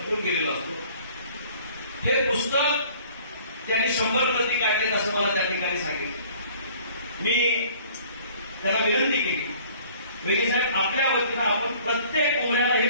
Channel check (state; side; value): inverted; both; correlation -0.53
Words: गेलेला असतो. हे पुस्तक त्यांनी 100 प्रती काढलेत असं मला त्या ठिकाणी सांगितलं. मी त्याला विनंती केली वेगळी साहेब आपल्या वतीनं आपण प्रत्येक उमऱ्याला